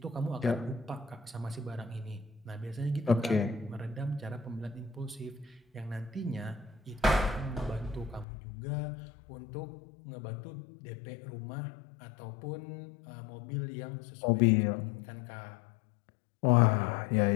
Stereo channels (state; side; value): drops out; right; at 8.2 s